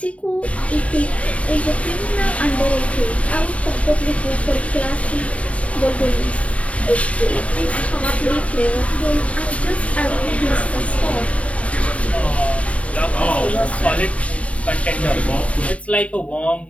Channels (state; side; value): late; right; 0.065 ms